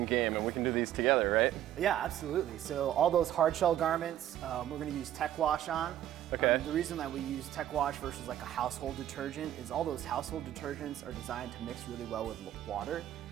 game, and we can do these together, right? Yeah, absolutely. So all those hard shell garments, we're going to use Tech Wash on. Okay. The reason that we use Tech Wash versus like a household detergent is all those household detergents are designed to mix really well with water,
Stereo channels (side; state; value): left; quieter; 12.1 dB